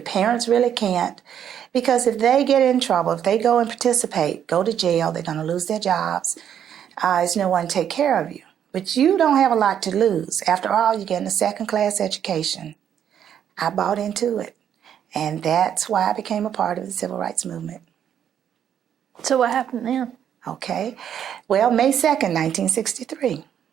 parents really can't, because if they get in trouble, if they go and participate, go to jail, they're going to lose their jobs. There's no one to take care of you. But you don't have a lot to lose. After all, you're getting a second-class education. I bought into it, and that's why I became a part of the civil rights movement. So what happened then? Okay. Well, May 2nd, 1963.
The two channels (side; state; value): left; quieter; 9.3 dB